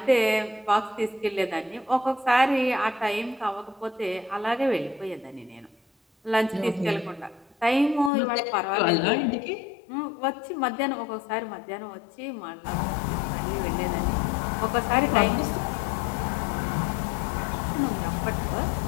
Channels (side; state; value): right; drops out; at 8.1 s